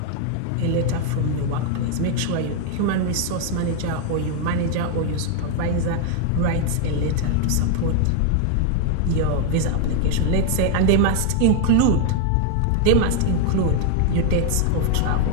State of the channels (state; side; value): different; both; correlation 0.00